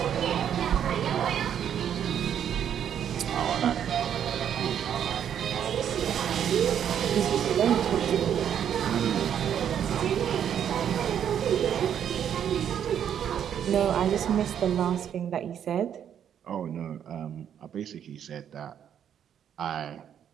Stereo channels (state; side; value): quieter; left; 9.1 dB